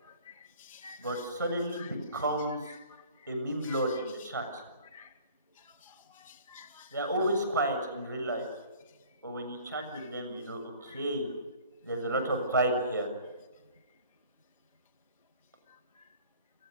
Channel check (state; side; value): inverted; both; correlation -0.50